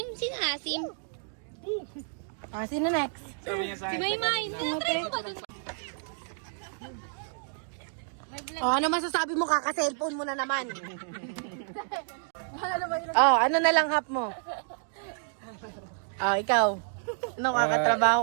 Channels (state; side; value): silent; left; 58 dB below the other